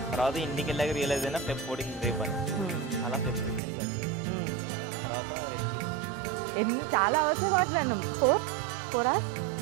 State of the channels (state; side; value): drops out; left; at 3.6 s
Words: తర్వాత ఇంటికి వెళ్ళాక రియలైజ్ అయినా Feb 14 రేపు అని. అలా Feb 15 కలిసాం. తర్వాత రెస్ట్ ఎన్ని చాలా అవర్స్ మాట్లాడినాం. 4